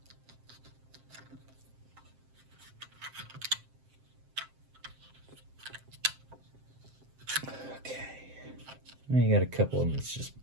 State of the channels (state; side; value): late; left; 7.6 ms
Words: Okay. Now you got a couple of them that's just